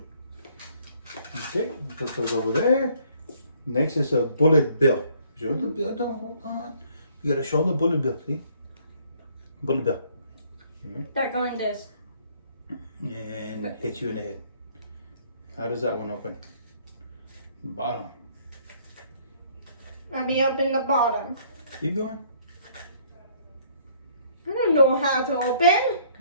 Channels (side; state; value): both; inverted; correlation -0.62